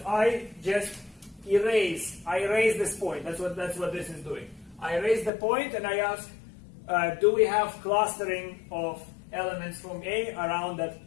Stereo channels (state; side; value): drops out; right; at 5.3 s